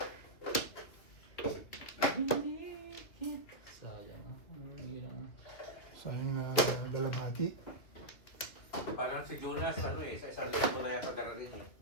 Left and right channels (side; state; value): right; late; 2.6 ms